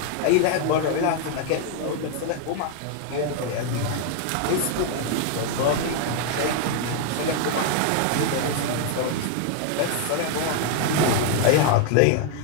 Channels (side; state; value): both; different; correlation 0.00